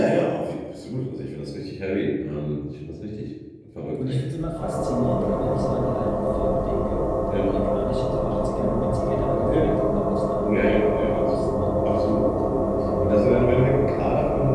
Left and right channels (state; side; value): identical; both; correlation 1.00